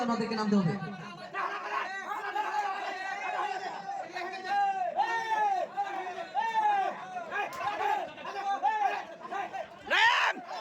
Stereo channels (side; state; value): both; identical; correlation 1.00